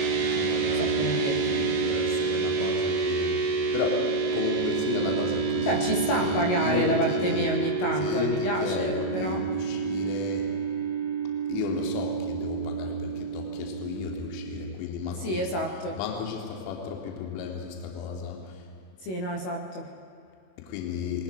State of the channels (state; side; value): late; right; 22 ms